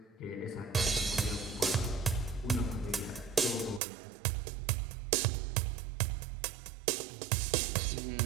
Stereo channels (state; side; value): drops out; left; at 3.8 s